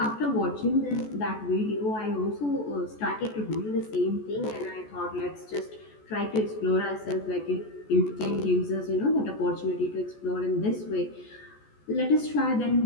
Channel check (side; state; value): right; late; 14 ms